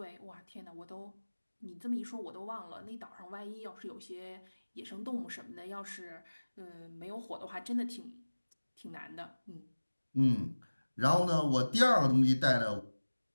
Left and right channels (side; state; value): both; inverted; correlation -1.00